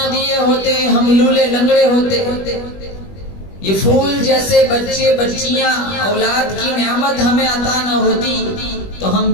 दिए होते हम लूले लंगड़े होते। ये फूल जैसे बच्चे बच्चियां औलाद की नेमत हमें अता न होती तो हम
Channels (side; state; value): right; late; 21 ms